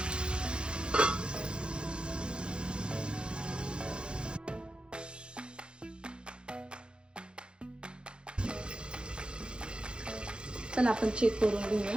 चला आपण चेक करून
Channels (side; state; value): left; late; 0.053 ms